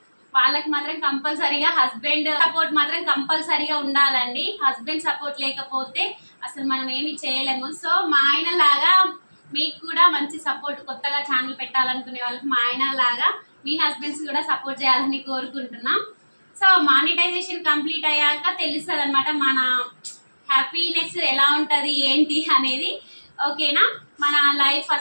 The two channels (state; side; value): inverted; both; correlation -1.00